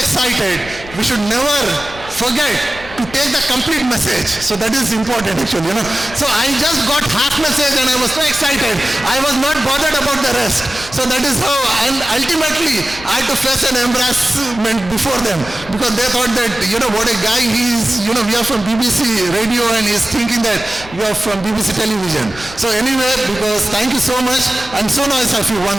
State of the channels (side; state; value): left; noise; rumble, 17 dB below the sound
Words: we should never forget to take the complete message. So that is important actually, So I just got half message and I was so excited. I was not bothered about the rest. So that is how, and ultimately I had to face an embarrassment before them because they thought that, what a guy he is, we are from BBC radio and he's thinking that we are from BBC television. So anyway, because thank you so much. I'm so nice of you